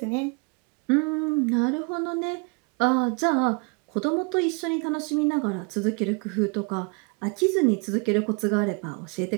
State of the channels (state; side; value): quieter; left; 33.5 dB